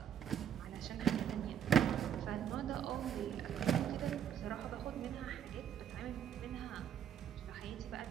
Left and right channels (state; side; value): quieter; left; 9.3 dB